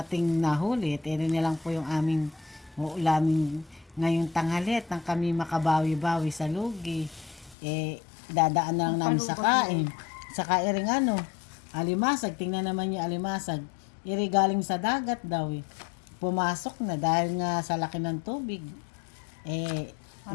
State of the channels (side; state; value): right; drops out; at 7.6 s